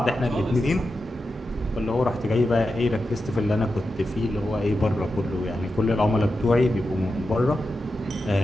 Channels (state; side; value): normal; both; correlation 0.90